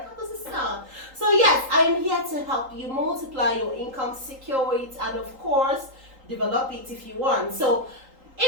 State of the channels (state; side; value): late; left; 3.8 ms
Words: How does it sound? So yes, I am here to help you multiply your income, secure it, and of course, develop it if you want. So